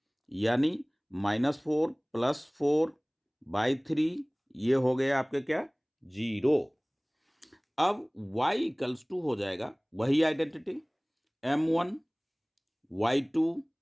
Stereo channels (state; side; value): identical; both; correlation 1.00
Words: यानी -4 + 4/3, ये हो गया आपके क्या? 0। अब y = हो जाएगा वही identity m1 y2